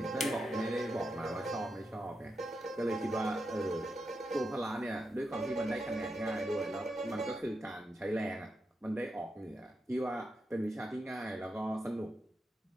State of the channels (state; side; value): normal; both; correlation 0.86